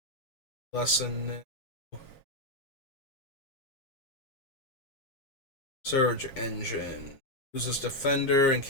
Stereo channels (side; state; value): right; late; 7.4 ms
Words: Lesson. Surge Engine. Uses Defender and